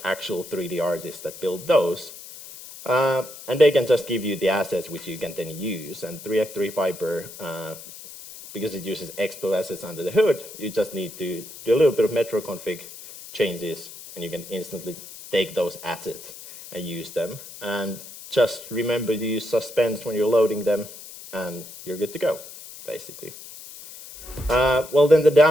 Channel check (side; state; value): left; noise; hiss, 15 dB below the sound